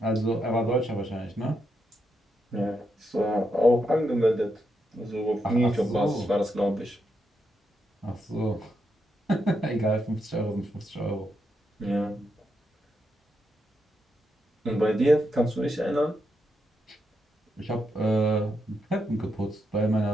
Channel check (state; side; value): normal; both; correlation 0.82